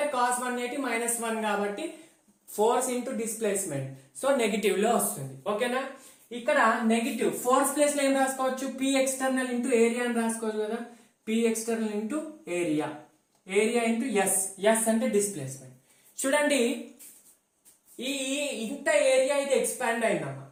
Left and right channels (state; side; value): identical; both; correlation 1.00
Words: cos 180 మైనస్ 1 కాబట్టి force into displacement, so negative లో వస్తుంది. ఓకేనా? ఇక్కడ నెగిటివ్ ఫోర్స్ ప్లేస్ లో ఏం రాసుకోవచ్చు? P ఎక్స్టర్నల్ ఇంటూ ఏరియా అని రాసుకోవచ్చు కదా. P external into area, area into S అంటే డిస్ప్లేస్మెంట్. చూడండి, ఈ ఇంత ఏరియా ఇది ఎక్స్పాండ్ అయిందమ్మా,